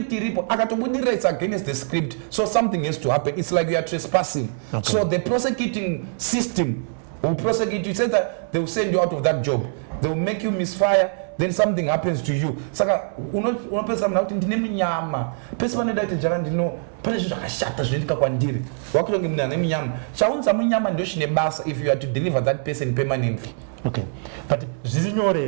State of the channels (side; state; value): left; silent; 63 dB below the other